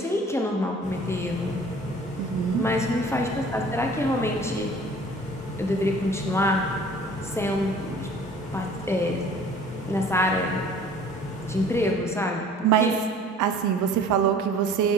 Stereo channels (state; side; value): normal; both; correlation 0.49